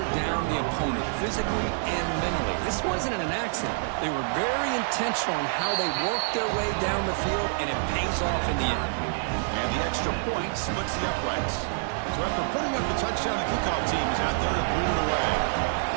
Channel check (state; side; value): silent; left; digital silence